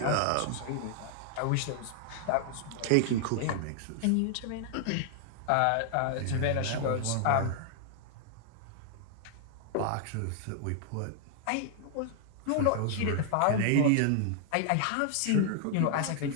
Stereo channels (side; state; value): both; different; correlation 0.00